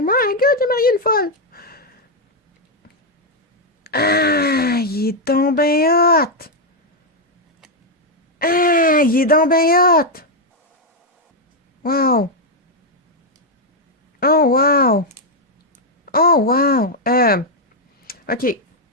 My God, j'ai marié une folle! Ah, il est donc ben hot! Ah, il est donc ben hot! Wow! Oh, wow! Oh, wow! OK.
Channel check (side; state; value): both; normal; correlation 0.00